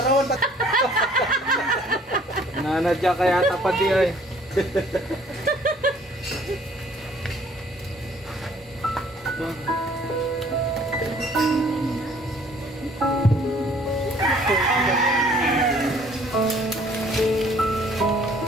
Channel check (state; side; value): normal; both; correlation 0.58